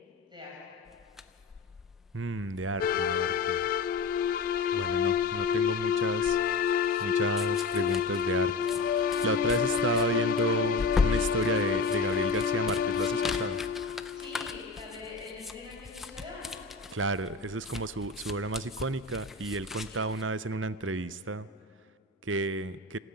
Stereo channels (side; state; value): right; quieter; 3.7 dB